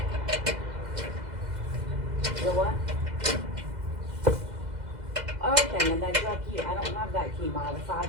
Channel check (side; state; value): left; late; 2.0 ms